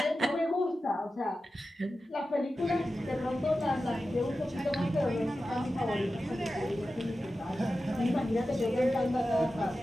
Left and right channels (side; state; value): both; normal; correlation 0.93